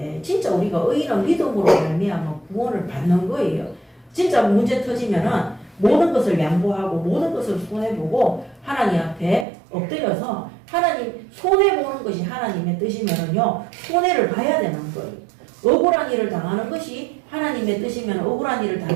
진짜 우리가 의인은 믿음으로 말미암아 구원을 받는 거예요. 진짜 문제 터지면은 모든 것을 양보하고 모든 것을 손해보고 하나님 앞에 엎드려서 하나님 손해보는 것이 하나님의 뜻이면은요, 손해를 봐야 되는 거예요. 억울한 일을 당하는 것이 하나님의 뜻이면 억울한 일을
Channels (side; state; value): left; drops out; at 9.5 s